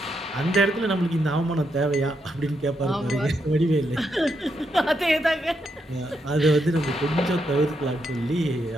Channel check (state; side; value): normal; both; correlation 0.81